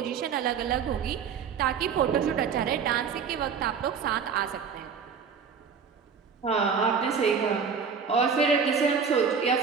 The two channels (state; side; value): quieter; left; 6.3 dB